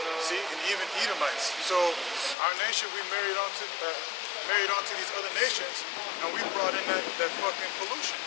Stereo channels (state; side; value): drops out; right; at 2.4 s